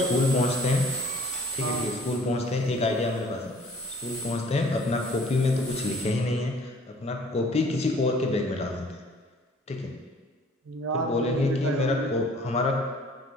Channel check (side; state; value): both; normal; correlation 0.55